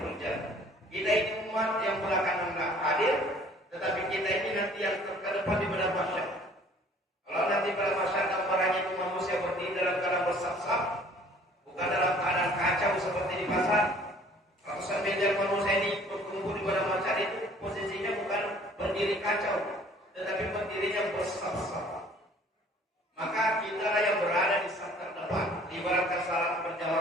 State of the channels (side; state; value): both; normal; correlation 0.54